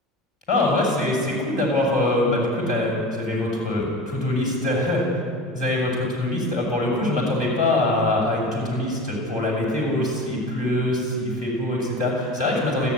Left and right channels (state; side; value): normal; both; correlation 0.33